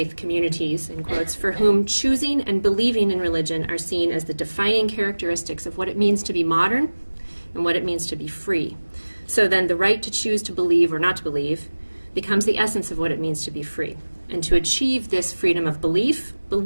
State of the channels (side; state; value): both; inverted; correlation -1.00